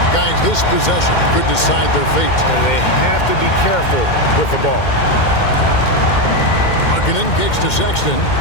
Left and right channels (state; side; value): late; right; 2.1 ms